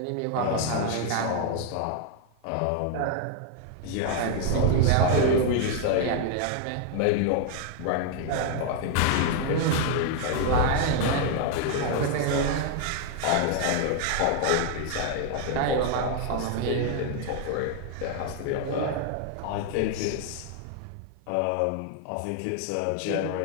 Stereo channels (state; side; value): different; both; correlation 0.00